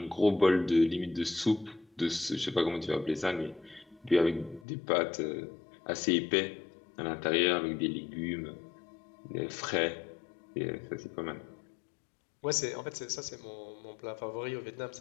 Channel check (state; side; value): drops out; right; at 4.7 s